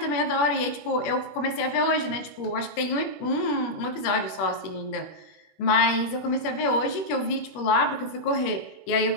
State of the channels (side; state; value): right; late; 21 ms